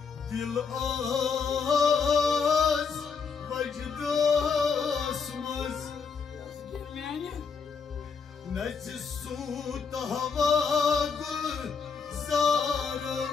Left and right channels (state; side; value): quieter; right; 5.6 dB